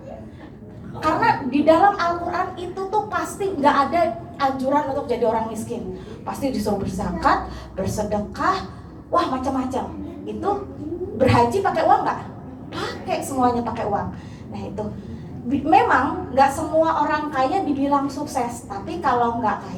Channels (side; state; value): both; identical; correlation 1.00